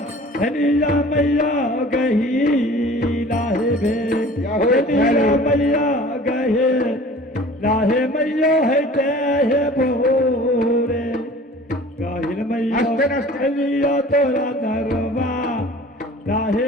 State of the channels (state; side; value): normal; both; correlation 0.45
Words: धनिया मैया गही लाहे भे धनिया मैया गहे लाहे मैया है ते है भोरे गाहिर मैया लिया तोरा दरबा